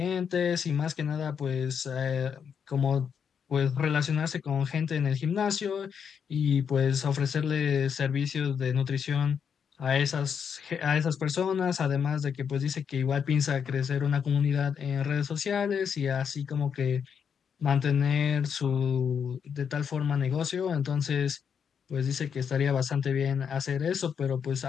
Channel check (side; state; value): right; quieter; 7.1 dB